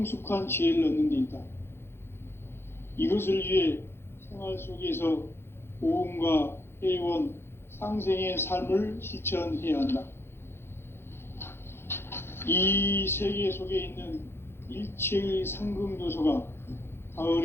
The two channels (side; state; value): right; late; 0.11 ms